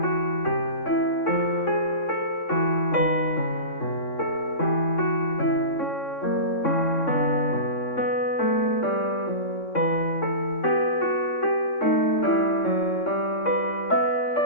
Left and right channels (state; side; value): late; right; 3.6 ms